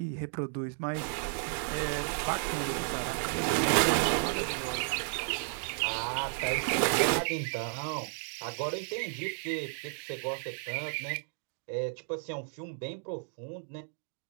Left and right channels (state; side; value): silent; left; 56 dB below the other